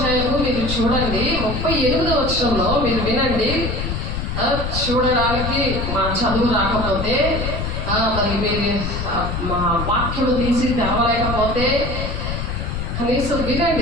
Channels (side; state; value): left; noise; rumble, 3 dB below the sound